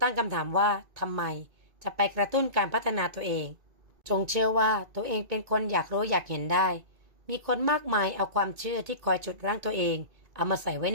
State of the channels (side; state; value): left; late; 2.1 ms